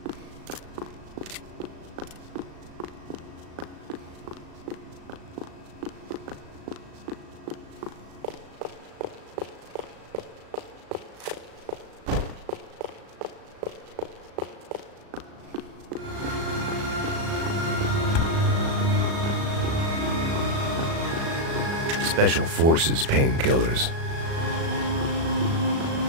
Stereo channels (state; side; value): late; left; 36 ms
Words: Special Forces painkillers.